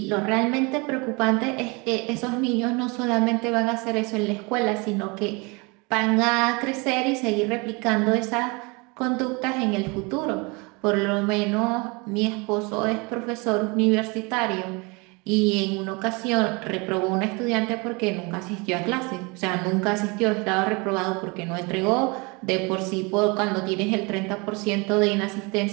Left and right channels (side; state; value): left; quieter; 28.4 dB